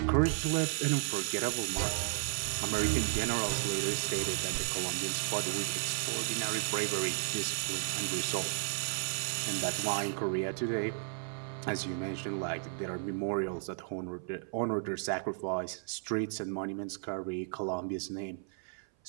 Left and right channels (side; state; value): left; silent; 55 dB below the other